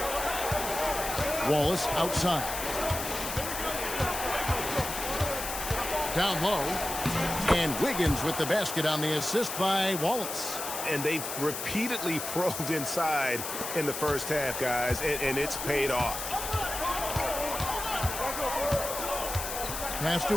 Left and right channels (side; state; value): left; noise; hiss, 5 dB below the sound